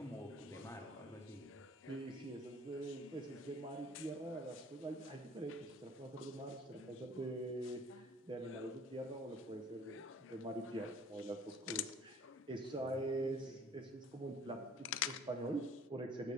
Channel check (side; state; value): both; normal; correlation 0.51